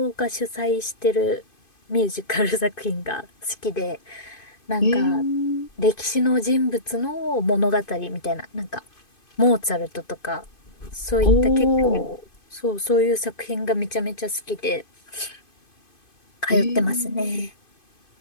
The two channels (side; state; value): right; late; 2.5 ms